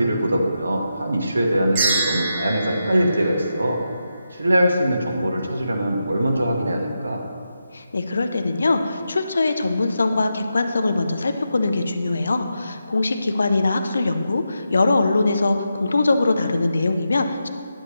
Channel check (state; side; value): inverted; both; correlation -0.87